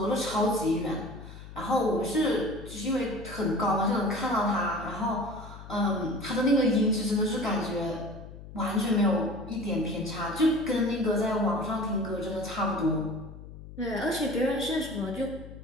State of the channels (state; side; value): noise; left; hum, 15 dB below the sound